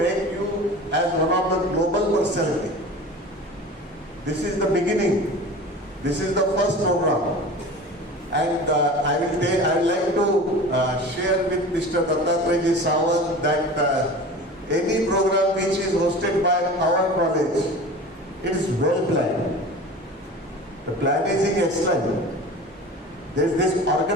you as one of the global personality. This is the beginning. This is the first program. And I would like to share with Mr. Dattatreya Sawant that any program which is hosted by our college, it is well planned. The planning is excellent. There is this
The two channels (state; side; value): normal; both; correlation 0.36